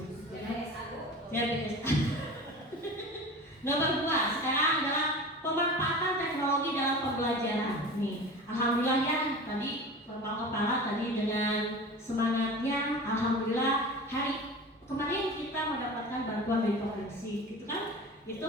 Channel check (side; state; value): both; normal; correlation 0.34